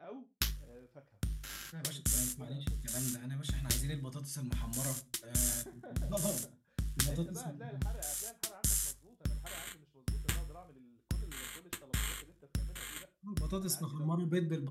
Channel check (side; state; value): both; identical; correlation 1.00